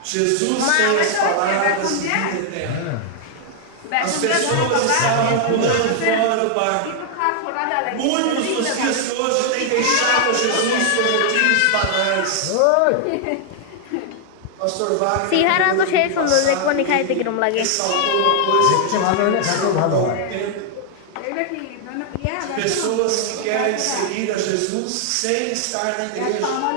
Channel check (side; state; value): both; different; correlation 0.00